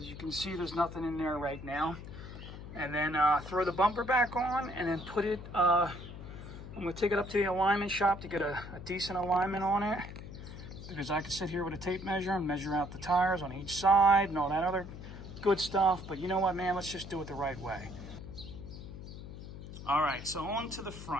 you can see, there's nothing in there right now. And then throw the bumper back on, and then put it, I'm going to take it up to the alignment shop to get a decent alignment on it, because I can sit here with a tape measure and measure out the tires on each side and all that other good stuff. But you know what, man, let's just do it the right way. All right, so on to the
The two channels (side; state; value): left; noise; hum, 12 dB below the sound